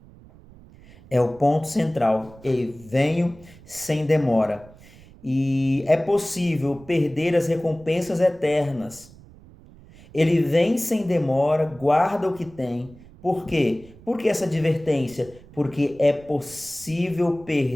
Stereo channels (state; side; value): noise; right; rumble, 22 dB below the sound